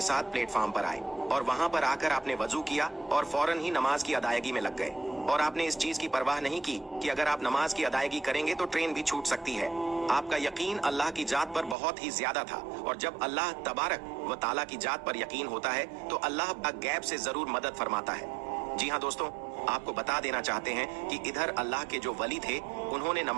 साथ प्लेटफॉर्म पर आए और वहां पर आकर आपने वजू किया और फौरन ही नमाज की अदायगी में लग गए। और आपने इस चीज की परवाह नहीं की कि अगर आप नमाज की अदायगी करेंगे तो ट्रेन भी छूट सकती है। आपका यकीन अल्लाह की जात पर बहुत ही ज्यादा था। और जब अल्लाह तबारक व ताला की जात पर यकीन होता है तो अल्लाह गैब से जरूर मदद फरमाता है। जी हाँ दोस्तों, आपको बता देना चाहते हैं कि इधर अल्लाह के जो वली थे उन्होंने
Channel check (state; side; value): drops out; left; at 11.8 s